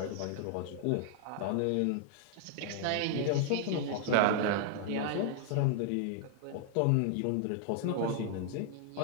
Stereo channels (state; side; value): different; both; correlation -0.01